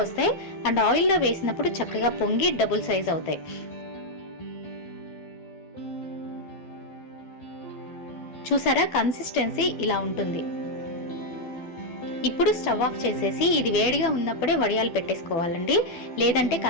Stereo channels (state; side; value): late; right; 12 ms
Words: వస్తాయి అండ్ ఆయిల్లో వేసినప్పుడు చక్కగా పొంగి డబుల్ సైజ్ అవుతాయి. చూసారా, కన్సిస్టెన్సీ ఇలా ఉంటుంది. ఇప్పుడు స్టవ్ ఆఫ్ చేసేసి ఇది వేడిగా ఉన్నప్పుడే వడియాలు పెట్టేసుకోవాలండి, లేదంటే